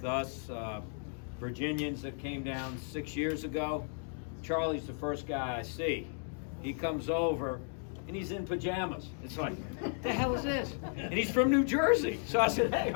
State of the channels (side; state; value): right; silent; 55 dB below the other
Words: us. Virginians that came down 6 years ago. Charlie's the first guy I see. He comes over and he's in pajamas. It's like, what the hell is this? And he's from New Jersey. So I said, hey,